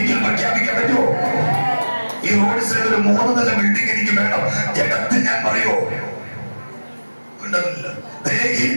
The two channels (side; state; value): both; inverted; correlation -1.00